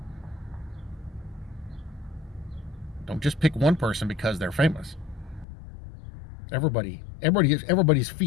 Don't just pick one person because they're famous. Everybody's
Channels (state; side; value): drops out; right; at 5.5 s